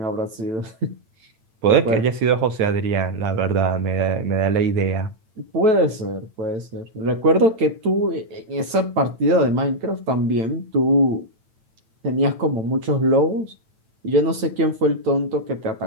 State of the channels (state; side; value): late; left; 8.9 ms